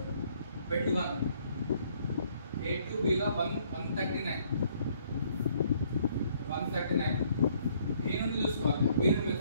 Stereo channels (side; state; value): both; inverted; correlation -0.65